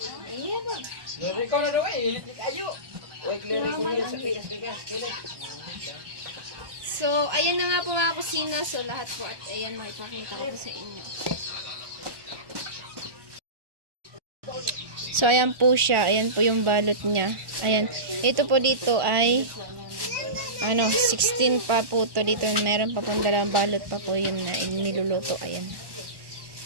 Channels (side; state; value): left; late; 1.1 ms